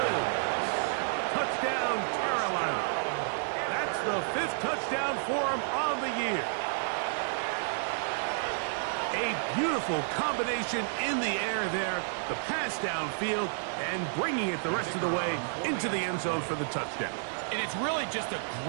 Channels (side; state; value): left; silent; digital silence